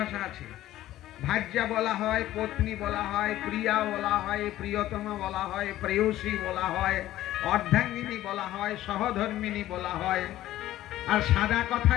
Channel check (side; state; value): right; quieter; 14.3 dB